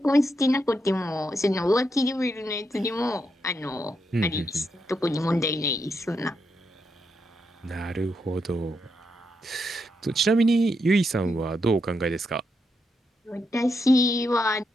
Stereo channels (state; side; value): normal; both; correlation 0.82